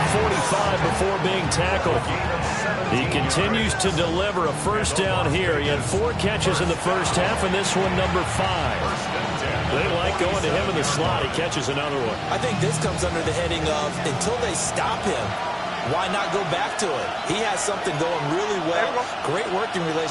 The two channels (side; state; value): both; identical; correlation 1.00